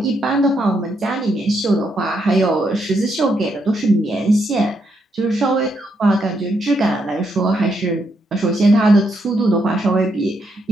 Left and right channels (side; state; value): both; normal; correlation 0.78